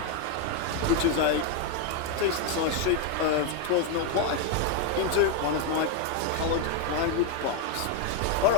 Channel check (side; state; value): both; different; correlation 0.02